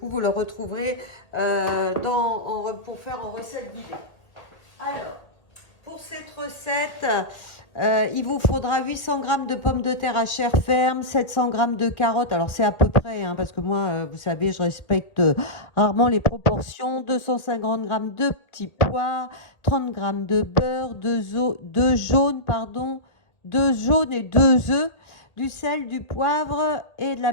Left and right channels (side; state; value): right; late; 1.6 ms